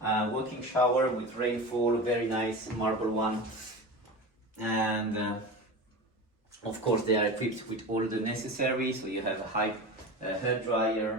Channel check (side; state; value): both; normal; correlation 0.29